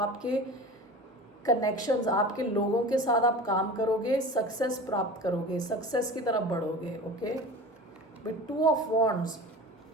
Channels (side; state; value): both; normal; correlation 0.35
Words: कनेक्शंस, आपके लोगों के साथ आप काम करोगे, सक्सेस प्राप्त करोगे, सक्सेस की तरफ बढ़ोगे, okay. With two of wands,